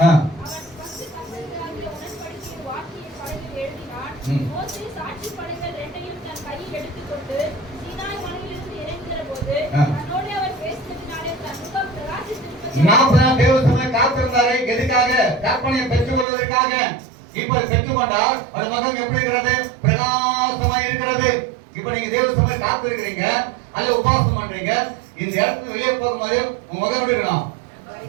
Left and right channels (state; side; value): drops out; left; at 16.2 s